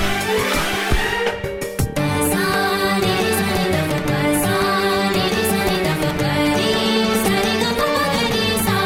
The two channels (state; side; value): identical; both; correlation 1.00